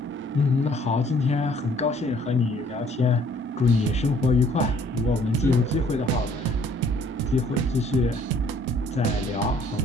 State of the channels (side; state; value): both; normal; correlation 0.60